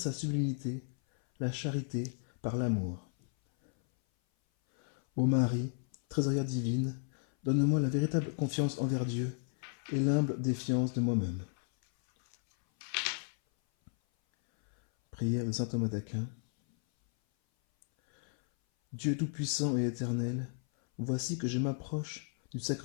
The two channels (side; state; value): right; silent; 55 dB below the other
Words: sublimité, la charité par l'amour. Ô Marie, trésorière divine, donne-moi la véritable confiance envers Dieu et l'humble défiance de moi-même. Prière de saint Thomas d'Aquin. Dieu tout-puissant et éternel, voici que je m'approche du